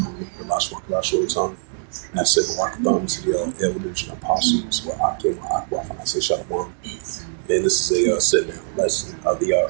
the Lashwan Kadash Rotan. And I said, Welcome to the elders and apostles, where Akim, Akwaf, and I say Shalom. And this is a sit-down lesson of the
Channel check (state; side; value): silent; left; digital silence